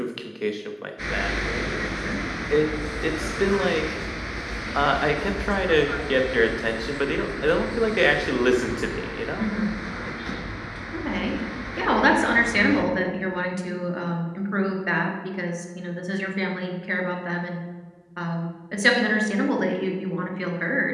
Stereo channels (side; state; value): both; identical; correlation 1.00